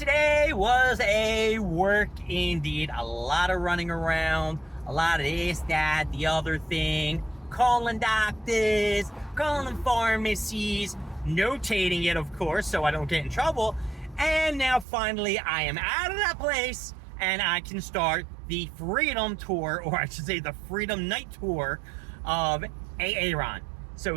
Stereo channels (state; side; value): drops out; left; at 14.9 s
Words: was a work indeed. A lot of running around, a lot of this, that, the other thing, calling doctors, calling pharmacies, notating it, of course, so I don't get in trouble. And now finally I am out of that place and I can start the Freedom Tour, or I should say the Freedom Night Tour of Aaron.